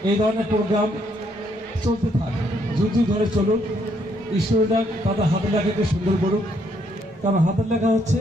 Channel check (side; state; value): both; normal; correlation 0.71